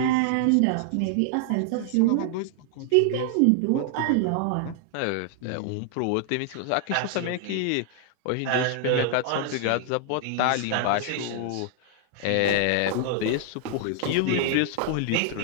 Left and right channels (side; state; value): both; different; correlation 0.00